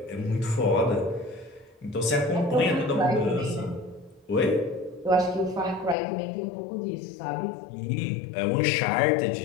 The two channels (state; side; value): drops out; right; at 6.0 s